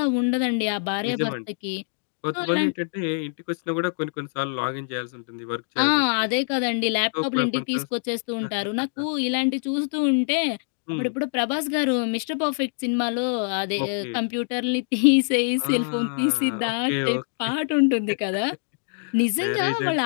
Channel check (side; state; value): right; silent; digital silence